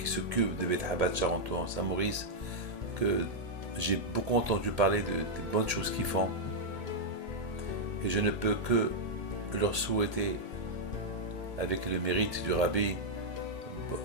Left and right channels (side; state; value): left; late; 2.2 ms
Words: s'occupe de Bet Chabad Charenton Saint-Maurice, que j'ai beaucoup entendu parler des bonnes choses qu'ils font. Et je ne peux que leur souhaiter, avec le mérite du Rabbi